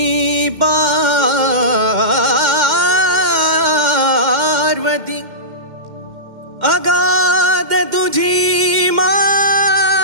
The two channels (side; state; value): left; late; 2.1 ms